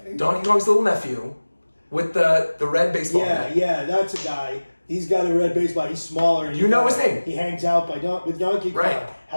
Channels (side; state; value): both; inverted; correlation -1.00